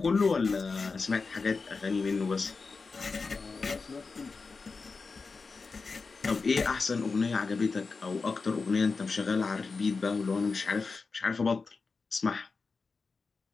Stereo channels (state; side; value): quieter; right; 4.4 dB